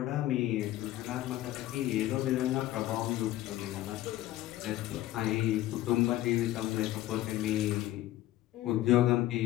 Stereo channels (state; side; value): quieter; right; 14.7 dB